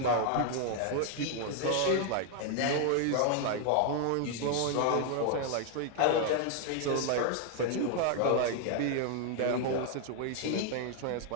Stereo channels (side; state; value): both; different; correlation 0.00